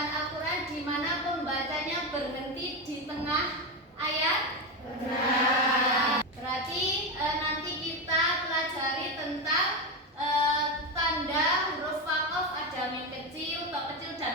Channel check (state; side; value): normal; both; correlation 0.13